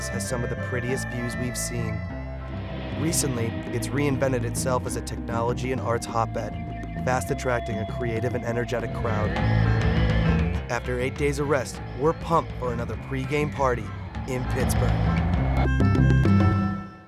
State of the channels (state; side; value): identical; both; correlation 1.00